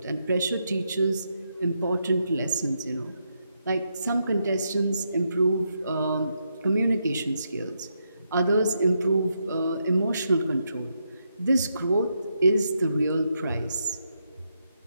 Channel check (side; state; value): both; inverted; correlation -0.81